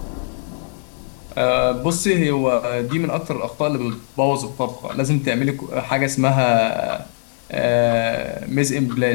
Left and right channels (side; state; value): right; silent; digital silence